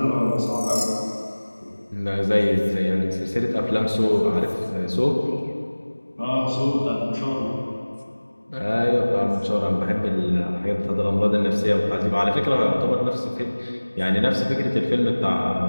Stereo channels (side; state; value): both; inverted; correlation -1.00